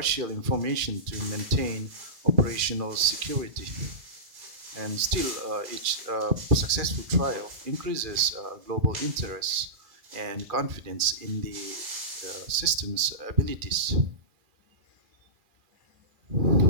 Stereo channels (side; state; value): left; late; 2.3 ms